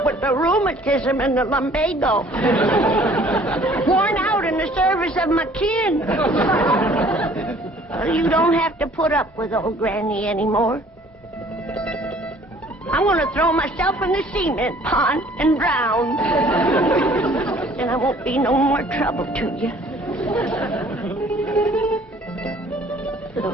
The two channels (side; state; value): both; normal; correlation 0.55